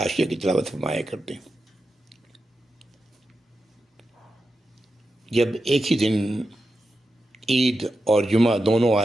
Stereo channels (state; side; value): normal; both; correlation 0.90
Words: کی تلاوت فرمایا کرتے ہیں. جب ایک ہی دن عید اور جمعہ دونوں